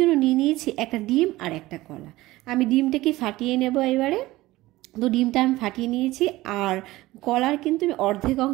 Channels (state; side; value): quieter; left; 18.0 dB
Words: নিয়ে নিয়েছি একটা ডিম আর একটা কলা। আমি ডিমটাকে ফাটিয়ে নেব এবারে। তো ডিমটা আমি ফাটিয়ে নিয়েছি, আর কলার কিন্তু আমি অর্ধেক